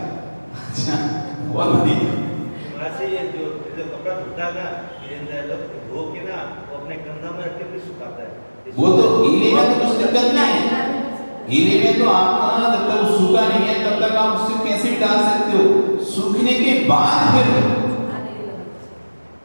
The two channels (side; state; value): both; inverted; correlation -1.00